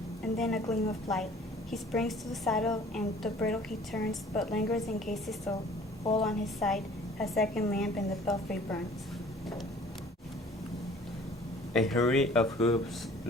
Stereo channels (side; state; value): both; normal; correlation 0.51